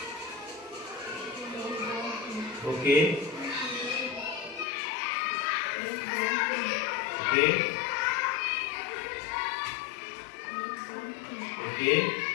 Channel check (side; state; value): right; drops out; at 4.7 s